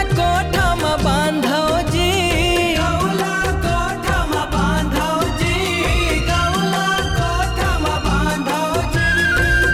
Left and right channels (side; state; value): both; identical; correlation 1.00